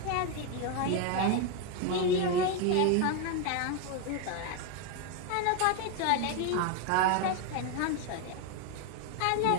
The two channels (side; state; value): both; different; correlation 0.01